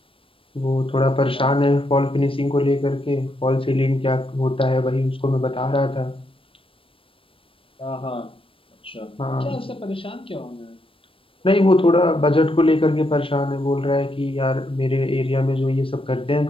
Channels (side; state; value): right; late; 0.26 ms